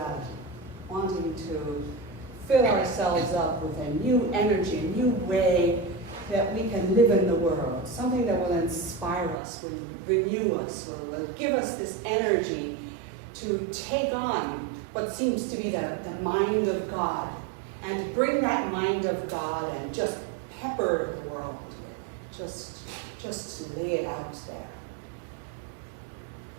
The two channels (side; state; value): left; drops out; at 9.4 s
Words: wanting to fill ourselves up with a new energy, a new way that we can live in the world, something that will inspire us, will renew us, will give us this energy to take on what seems to be the mind of God, and to bring that mind of God and just pepper the world with, just lay it out there.